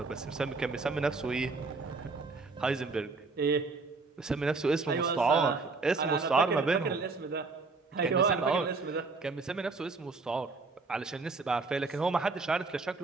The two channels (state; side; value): quieter; left; 4.0 dB